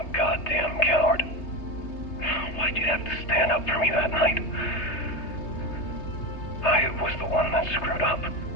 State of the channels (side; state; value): right; late; 3.3 ms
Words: goddamn coward. Why'd you have to stand up for me that night? I was the one that screwed up.